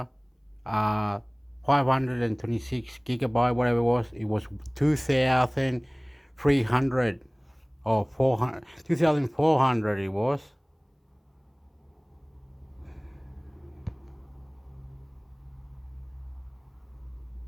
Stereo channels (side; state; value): both; identical; correlation 1.00